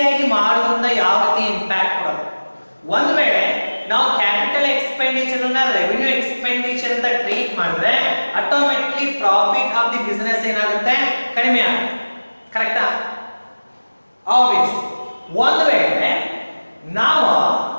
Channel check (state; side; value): inverted; both; correlation -1.00